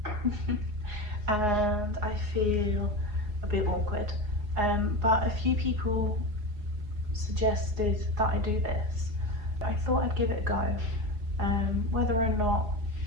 and I feel a bit awkward. But a few people suggested that I do this. I thought I'd give it a go. Whether or not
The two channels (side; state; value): left; late; 4.8 ms